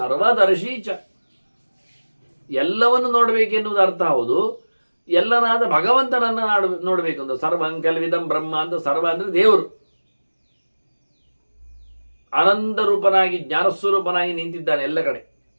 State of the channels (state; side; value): inverted; both; correlation -1.00